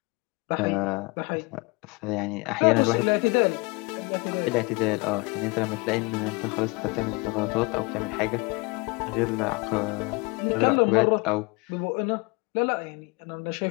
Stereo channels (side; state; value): right; quieter; 27.6 dB